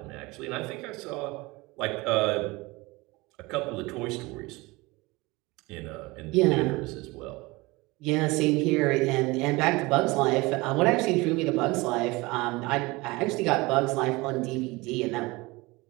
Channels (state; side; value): quieter; left; 23.1 dB